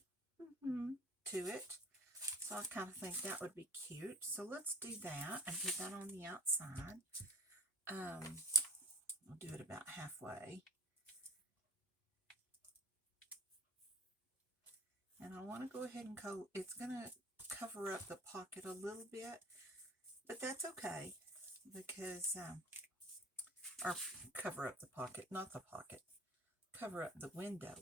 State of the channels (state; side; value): normal; both; correlation 0.42